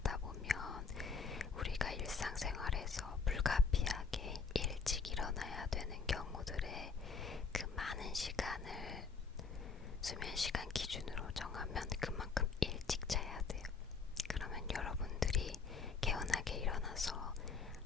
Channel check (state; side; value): quieter; right; 5.1 dB